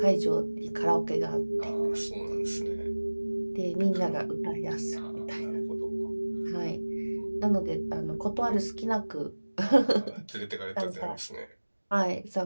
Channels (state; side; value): inverted; both; correlation -1.00